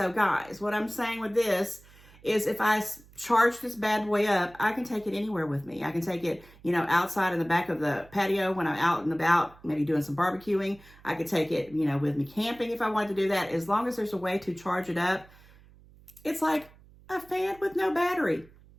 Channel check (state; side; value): noise; right; hum, 25 dB below the sound